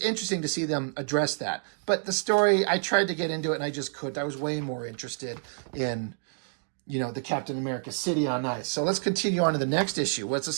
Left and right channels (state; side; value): silent; left; digital silence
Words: interesting to see them address that. But the story, I tried to get into it and I just couldn't. I was way more interested in, the Captain America City on Ice. So let's continue on to the next issue. Let's